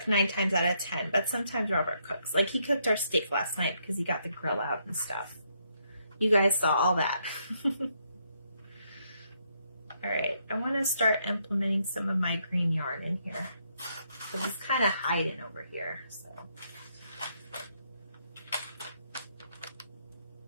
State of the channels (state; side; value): inverted; both; correlation -0.75